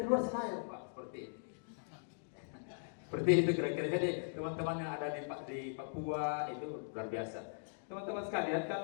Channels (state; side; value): silent; right; digital silence